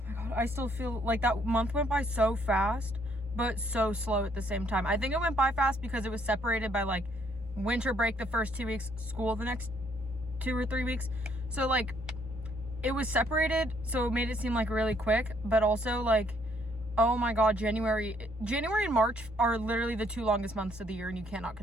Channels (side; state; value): both; normal; correlation 0.68